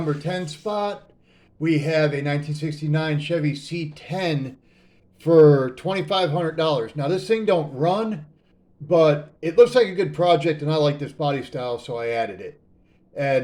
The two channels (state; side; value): identical; both; correlation 1.00